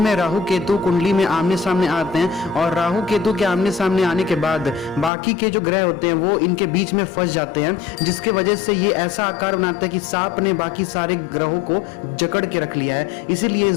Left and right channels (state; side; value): drops out; right; at 5.1 s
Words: में राहु केतु कुंडली में आमने सामने आते हैं और राहु केतु के आमने सामने आने के बाद बाकी के जो ग्रह होते हैं वो इनके बीच में फंस जाते हैं, जिसके वजह से ये ऐसा आकार बनाता है कि सांप ने बाकी सारे ग्रहों को जकड़ के रख लिया है। इसीलिए इस